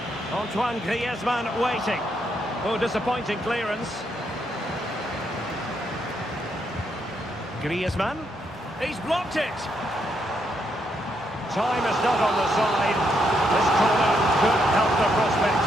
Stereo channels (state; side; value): normal; both; correlation 0.77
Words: Antoine Griezmann waiting. Oh, disappointing clearance. Griezmann. He's blocked it. Time is not on the side. This corner could help the prospects